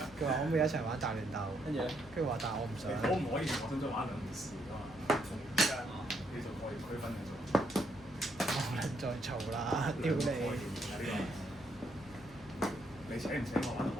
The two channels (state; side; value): normal; both; correlation 0.75